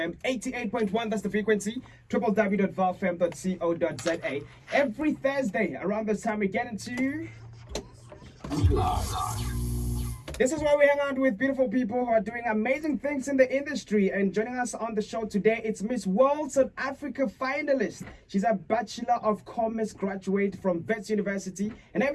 88.1, that's the frequency, www.vowfm.co.za. Every Thursday around this time we get into... This is where we hang out with beautiful people who are doing amazing things in the industry. And joining us on the show today, it's Miss World South Africa finalist. She's a Bachelor of Commerce graduate from Wits University. Her name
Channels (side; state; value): both; identical; correlation 1.00